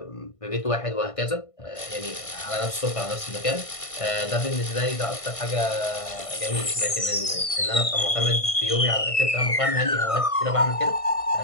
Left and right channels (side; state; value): right; late; 1.5 ms